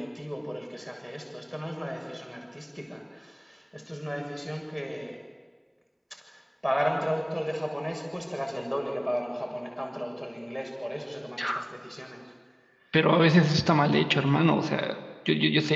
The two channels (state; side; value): identical; both; correlation 1.00